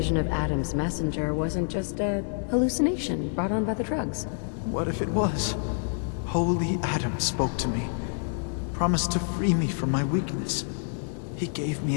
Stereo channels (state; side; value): silent; right; digital silence